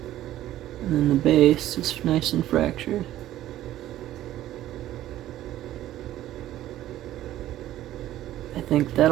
And then the base is nice and fractured. I think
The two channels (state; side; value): quieter; left; 13.6 dB